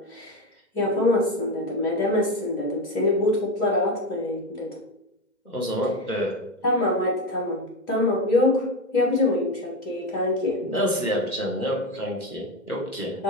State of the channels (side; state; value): right; late; 2.1 ms